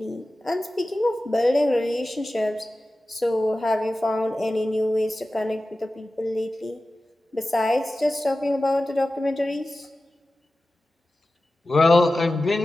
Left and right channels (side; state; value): both; normal; correlation 0.95